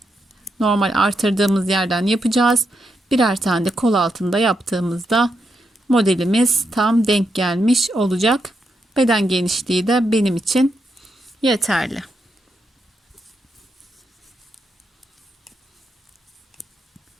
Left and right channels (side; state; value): both; normal; correlation 0.82